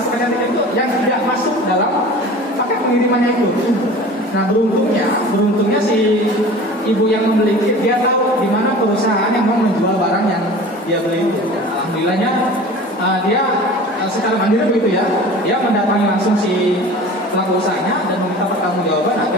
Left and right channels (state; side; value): normal; both; correlation 0.40